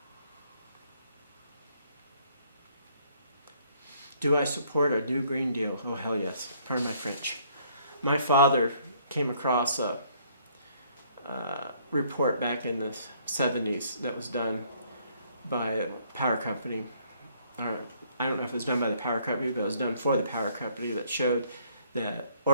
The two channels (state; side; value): inverted; both; correlation -0.64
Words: Do I support a new Green Deal? Oh, hell yes. Pardon my French. My father came across a report back in the 70s that was done by a power company. I don't know if it was done by the power company, but it was done for the power company, that showed that